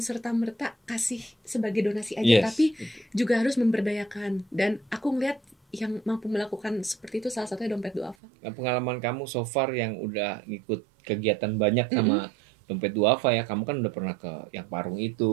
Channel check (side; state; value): left; drops out; at 8.2 s